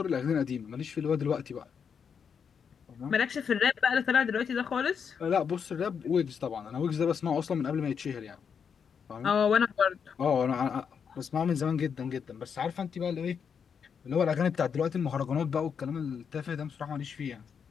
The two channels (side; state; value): right; quieter; 6.8 dB